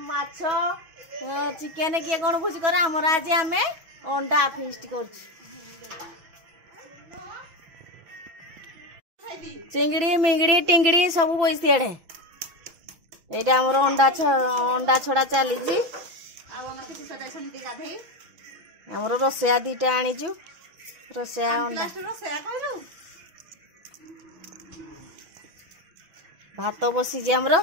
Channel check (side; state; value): left; late; 6.1 ms